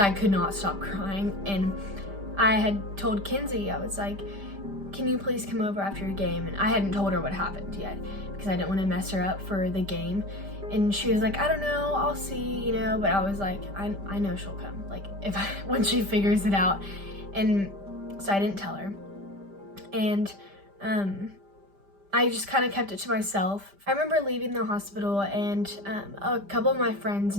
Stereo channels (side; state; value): left; late; 5.0 ms